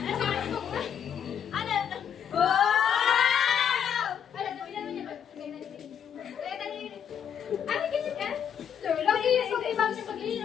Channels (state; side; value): quieter; right; 8.5 dB